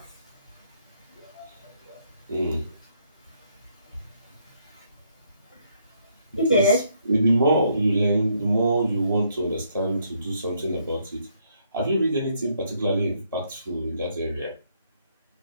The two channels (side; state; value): both; inverted; correlation -0.72